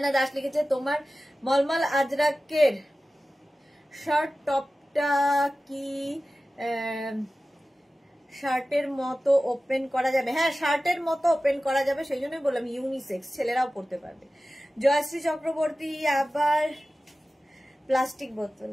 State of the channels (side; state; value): both; normal; correlation 0.95